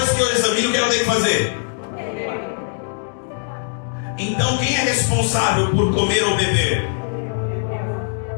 que eu examino, o que eu tenho que fazer? Então quem é responsável por comer ou beber?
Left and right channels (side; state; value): right; silent; digital silence